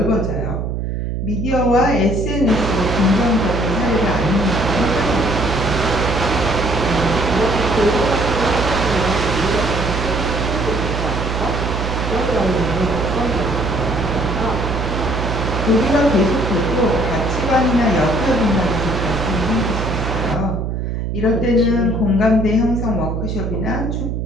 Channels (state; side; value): noise; right; hum, 2 dB below the sound